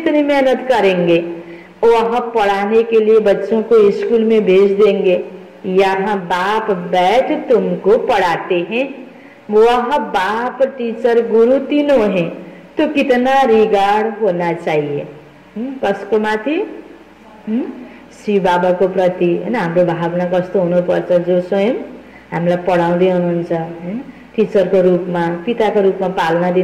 मेहनत करेंगे। वह पढ़ाने के लिए बच्चों को स्कूल में भेज देंगे, यहाँ बाप बैठ तुमको पढ़ाते हैं। वह बाप टीचर गुरु तीनों हैं, तो कितना रिगार्ड होना चाहिए कसको माथि? शिव बाबा को प्रति हैन हाम्रो भावना कस्तो हुनुपर्छ? जो स्वयं हामीलाई पढाउँदै हुनुहुन्छ हैन, टीचरको रूपमा, पिताको रूपमा पालना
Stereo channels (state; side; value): identical; both; correlation 1.00